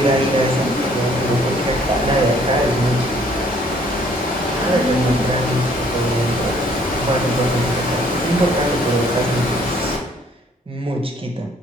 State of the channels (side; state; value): both; normal; correlation 0.61